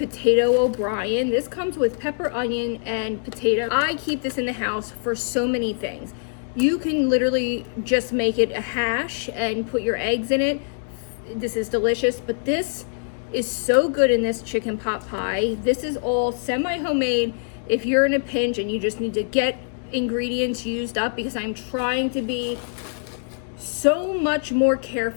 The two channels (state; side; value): silent; right; digital silence